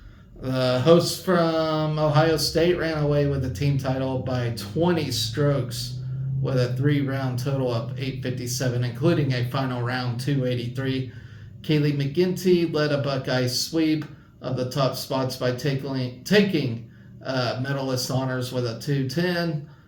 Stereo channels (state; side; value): identical; both; correlation 1.00